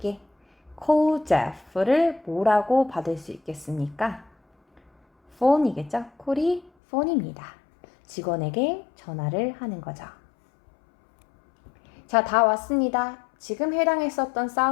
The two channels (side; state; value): right; drops out; at 6.7 s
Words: call Jeff를 뭐라고 받을 수 있겠습니까? phone이겠죠? call이 phone입니다. 직원에게 전화를 하는 거죠. 자, 다 왔습니다. 지금 해당했었던